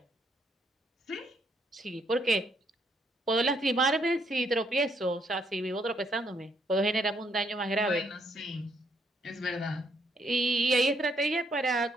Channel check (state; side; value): normal; both; correlation 0.72